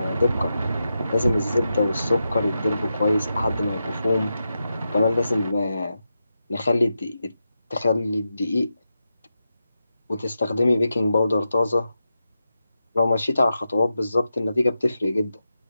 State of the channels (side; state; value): both; inverted; correlation -0.89